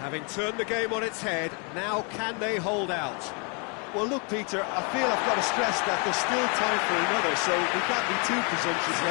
Having turned the game on its head, now can they hold out? Well, look, Peter, I feel I've got to stress that there's still time for another, so we can't be too presumptuous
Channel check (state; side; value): quieter; right; 35.5 dB